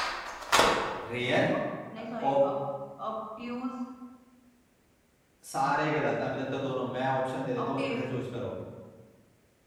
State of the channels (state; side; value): identical; both; correlation 1.00